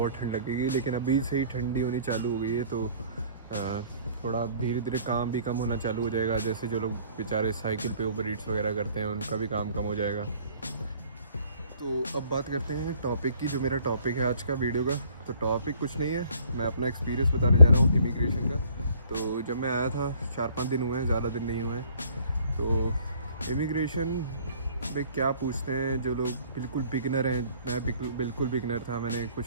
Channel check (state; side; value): inverted; both; correlation -0.57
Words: ठंड लगेगी, लेकिन अभी से ही ठंडी होनी चालू हो गई है तो थोड़ा धीरे धीरे काम भी कम होना चालू हो जाएगा। जैसे जो लोग बेचारे साइकिल पे उबर ईट्स वगैरह करते हैं उनका भी काम कम हो जाएगा। तो अब बात करते हैं टॉपिक की। जो मेरा टॉपिक है आज का वीडियो का, तो टॉपिक कुछ नहीं है, मैं अपना एक्सपीरियंस बताने जा रहा हूँ इमिग्रेशन का। तो जब मैं आया था 4-5 दिन हुए हैं, ज़्यादा दिन नहीं हुए हैं। तो इमिग्रेशन पे क्या पूछते हैं जो लोग बिल्कुल बिगनर हैं, मैं बिल्कुल बिगनर था, मैंने